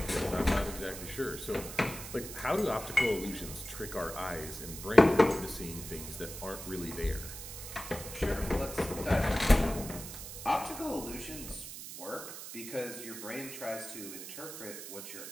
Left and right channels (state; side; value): noise; right; hiss, 10 dB below the sound